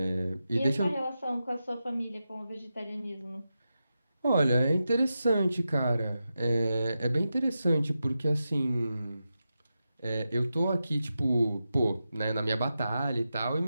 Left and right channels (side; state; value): both; inverted; correlation -0.90